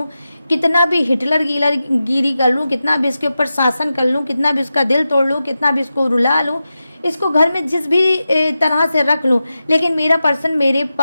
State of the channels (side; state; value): both; inverted; correlation -0.92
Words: कितना भी हिटलर गिरी कर लूँ, कितना भी इसके ऊपर शासन कर लूँ, कितना भी इसका दिल तोड़ लूँ, कितना भी इसको रुला लूँ, इसको घर में जिस भी तरह से रख लूँ, लेकिन मेरा पर्सन मेरे